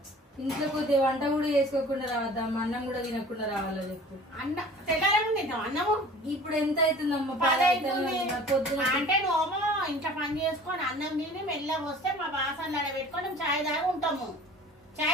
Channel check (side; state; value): both; normal; correlation 0.45